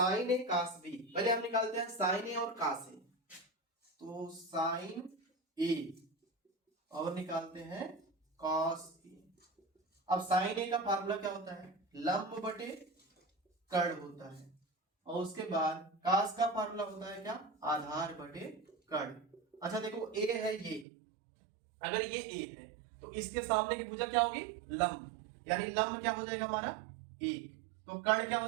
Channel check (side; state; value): left; drops out; at 20.9 s